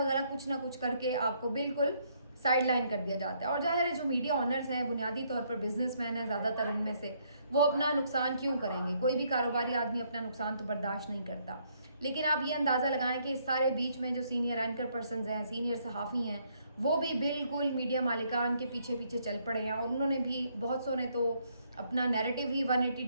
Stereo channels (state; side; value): inverted; both; correlation -0.70